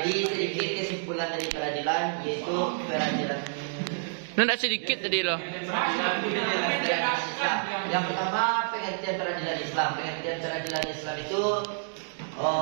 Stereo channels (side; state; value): left; silent; digital silence